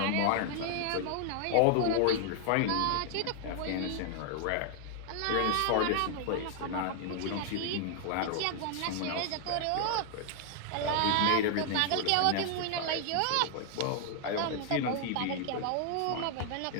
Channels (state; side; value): different; both; correlation 0.00